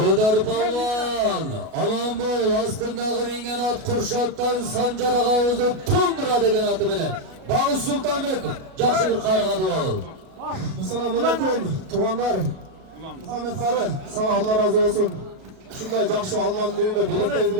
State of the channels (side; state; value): left; late; 37 ms